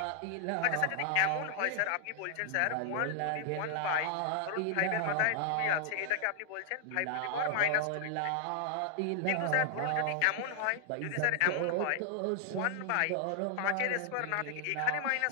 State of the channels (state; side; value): different; both; correlation 0.00